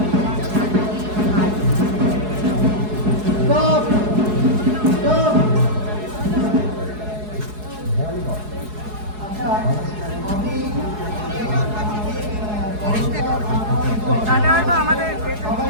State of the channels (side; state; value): left; late; 4.7 ms